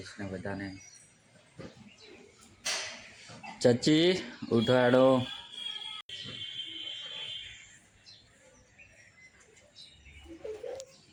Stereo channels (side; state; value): both; identical; correlation 1.00